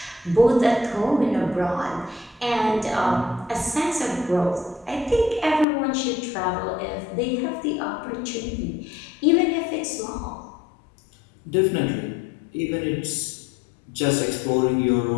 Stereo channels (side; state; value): right; drops out; at 5.7 s